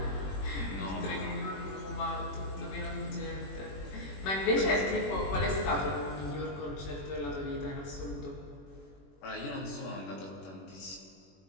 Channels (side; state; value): right; late; 21 ms